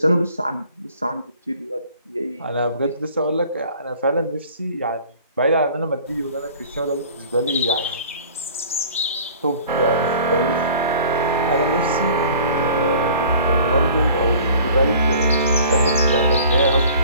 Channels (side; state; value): both; inverted; correlation -0.48